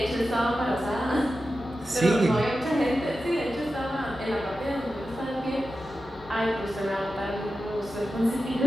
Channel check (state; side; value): normal; both; correlation 0.92